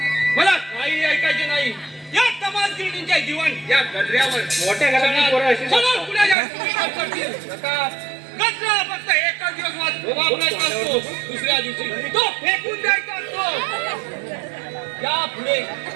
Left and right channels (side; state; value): left; drops out; at 6.4 s